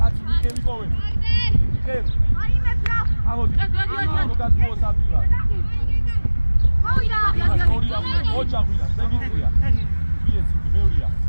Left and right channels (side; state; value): both; inverted; correlation -1.00